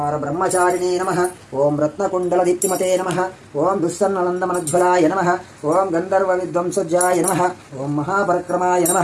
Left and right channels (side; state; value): both; identical; correlation 1.00